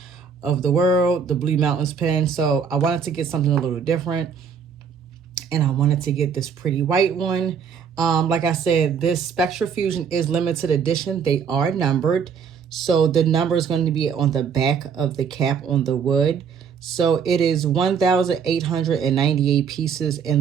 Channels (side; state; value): left; quieter; 6.6 dB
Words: of the World, the Blue Mountains pen. So I wanted to get something a little different. And I wanted to get this pretty white one. Like I said, this Spectra Fusion is limited edition. They are numbered. So the number is going to be on the back of the cap on the wood. So it is 1,898 pieces